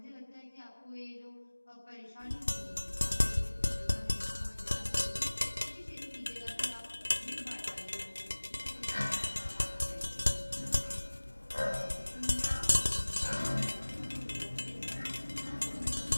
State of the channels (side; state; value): both; inverted; correlation -1.00